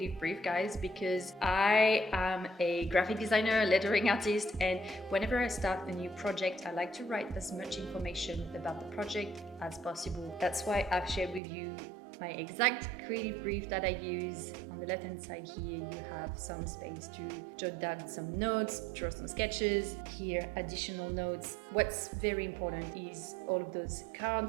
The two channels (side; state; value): left; drops out; at 11.4 s